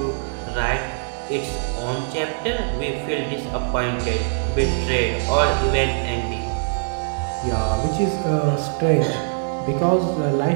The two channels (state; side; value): silent; left; 61 dB below the other